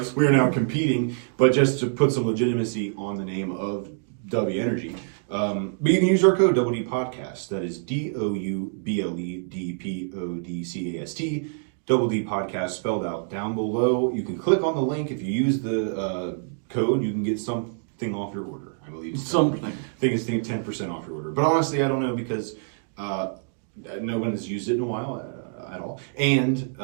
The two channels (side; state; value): left; silent; digital silence